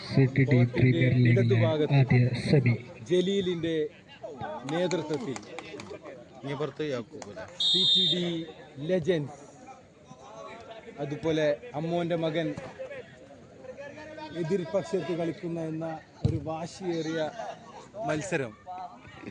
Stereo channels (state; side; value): identical; both; correlation 1.00